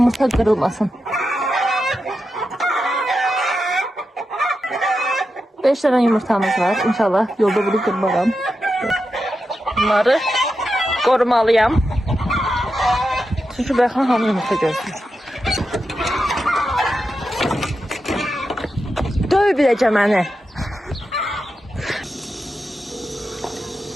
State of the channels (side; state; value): both; normal; correlation 0.88